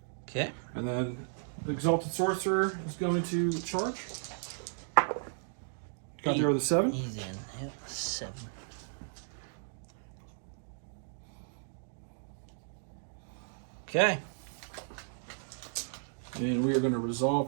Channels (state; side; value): silent; left; digital silence